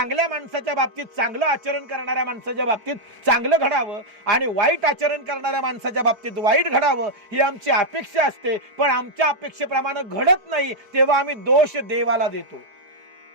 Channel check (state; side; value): late; left; 4.5 ms